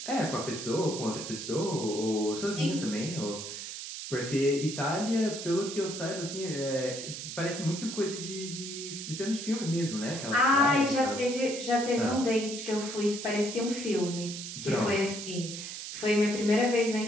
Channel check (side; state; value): right; noise; hiss, 8 dB below the sound